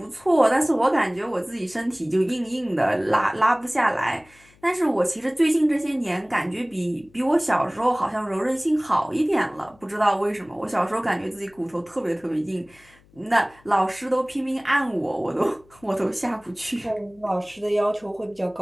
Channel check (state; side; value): noise; left; hum, 29 dB below the sound